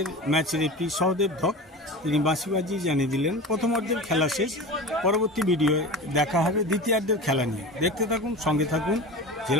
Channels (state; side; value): normal; both; correlation 0.31